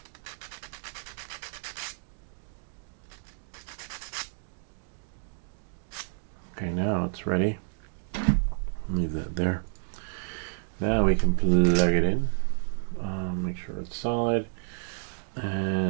Okay, now it's ready. Leave that there. Now we can plug it in. Make sure it's solid.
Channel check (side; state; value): left; silent; digital silence